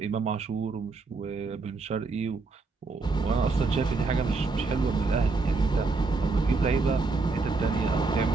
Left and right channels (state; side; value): quieter; left; 4.0 dB